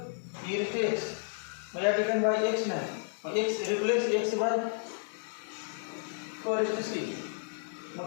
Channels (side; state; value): right; silent; digital silence